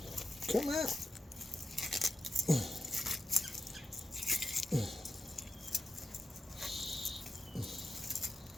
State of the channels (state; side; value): normal; both; correlation 0.88